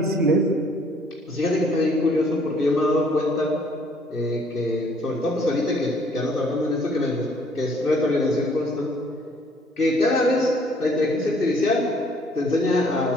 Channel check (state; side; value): normal; both; correlation 0.61